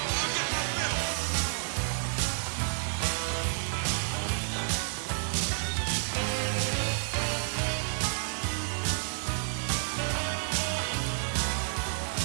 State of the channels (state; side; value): silent; left; digital silence